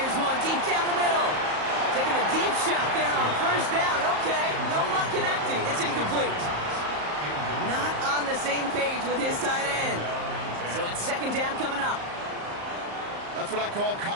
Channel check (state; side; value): late; left; 34 ms